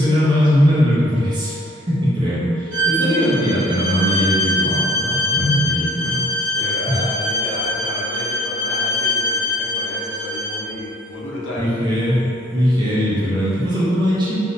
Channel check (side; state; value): both; normal; correlation 0.58